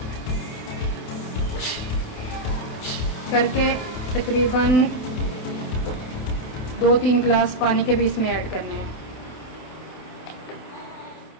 करके तकरीबन 2-3 गिलास पानी के भी इसमें ऐड करने हैं।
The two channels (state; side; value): late; right; 28 ms